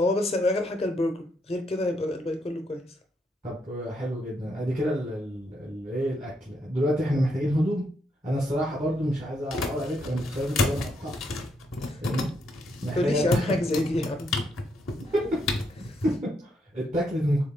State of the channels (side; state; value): both; normal; correlation 0.77